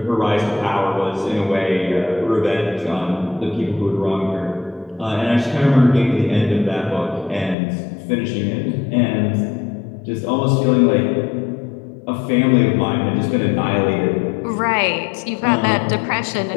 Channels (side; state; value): right; drops out; at 7.6 s